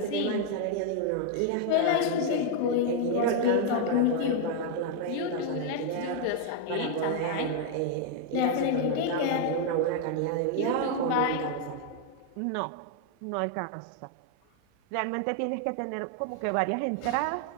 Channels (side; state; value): both; different; correlation 0.00